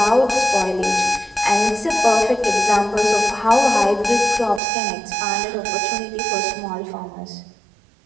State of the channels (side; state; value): left; drops out; at 4.6 s